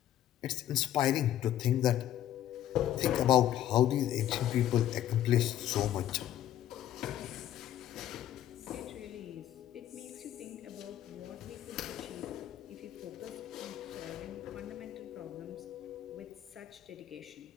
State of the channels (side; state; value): right; quieter; 12.0 dB